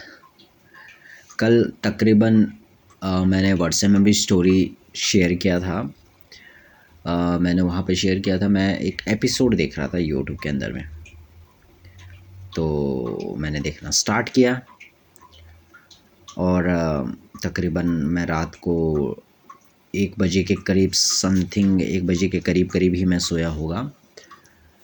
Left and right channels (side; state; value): both; identical; correlation 1.00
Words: कल तकरीबन मैंने व्हाट्सएप में भी स्टोरी शेयर किया था। मैंने वहाँ पे शेयर किया था, मैं एक एपिसोड देख रहा था यूट्यूब के अंदर में। तो मैंने देखना स्टार्ट किया और तकरीबन मैं रात को 1 बजे के करीब समथिंग 1 बजे के करीब करीब ही मैं सोया होगा।